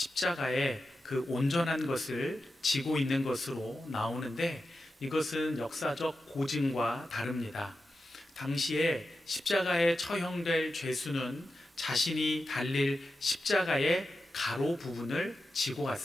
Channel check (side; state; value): both; normal; correlation 0.91